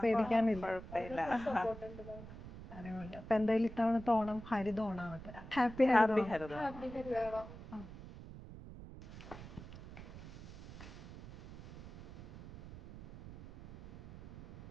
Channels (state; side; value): noise; right; rumble, 14 dB below the sound